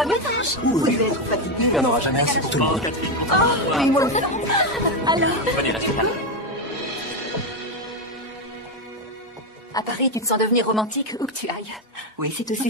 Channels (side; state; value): both; normal; correlation 0.08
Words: bien, ta hanche? Vous devez être fatigué. Il n'y en aura jamais assez pour tout le monde. Oui, moi aussi. Alors. Venez, restez là. À Paris, tu te sens devenir romantique où que tu ailles. Oui, c'est